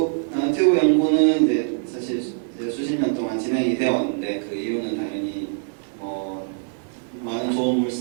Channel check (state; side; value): silent; left; digital silence